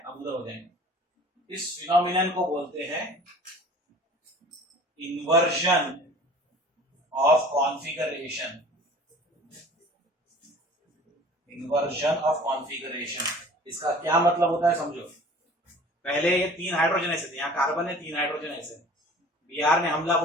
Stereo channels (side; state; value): both; normal; correlation 0.46